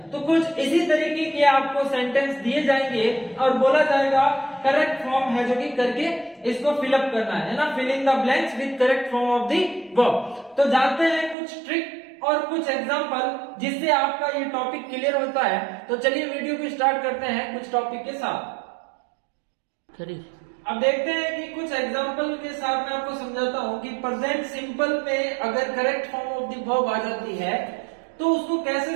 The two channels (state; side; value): drops out; left; at 11.4 s